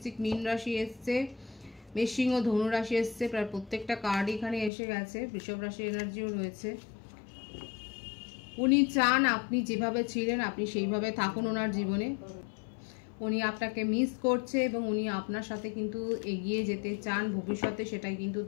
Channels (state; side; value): drops out; right; at 4.7 s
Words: মীন রাশি এসছে, মেষসিংহ, ধনু রাশি এসছে। প্রায় প্রত্যেকটা কার্ড এখানে এসে গেছে। বৃষভ রাশি এনার্জিও রয়েছে। উনি চান আপনি যেভাবে ছিলেন আপনি সেইভাবে থাকুন ওনার জীবনে। উনি আপনাকে মিস করছে এবং উনি আপনার সাথে কিন্তু এগিয়ে যেতে চান ভবিষ্যতে, সেটাই কিন্তু